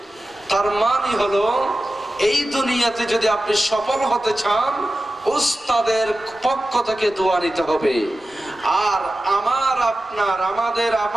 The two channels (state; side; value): normal; both; correlation 0.94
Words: তার মানে হলো এই দুনিয়াতে যদি আপনি সফল হতে চান, উস্তাদের পক্ষ থেকে দোয়া নিতে হবে। আর আমার আপনার